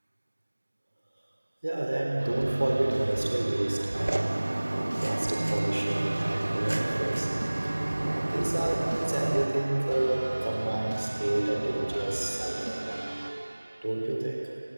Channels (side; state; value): both; inverted; correlation -1.00